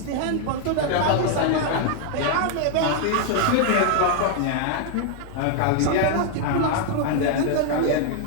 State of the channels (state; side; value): different; both; correlation 0.00